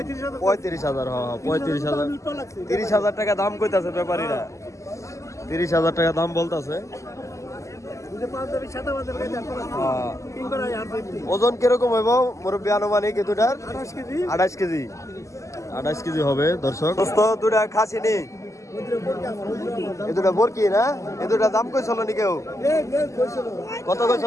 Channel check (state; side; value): late; right; 0.15 ms